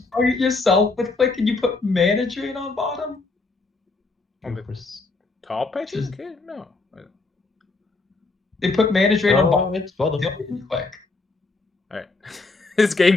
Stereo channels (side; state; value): right; quieter; 3.7 dB